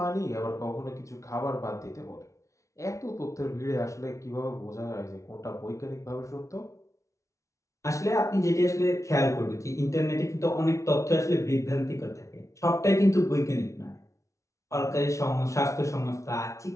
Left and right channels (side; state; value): right; late; 0.15 ms